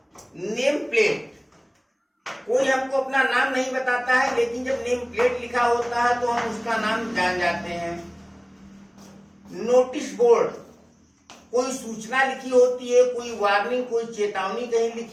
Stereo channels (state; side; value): identical; both; correlation 1.00